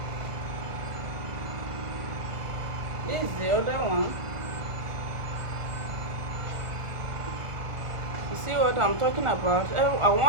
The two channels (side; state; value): left; late; 1.4 ms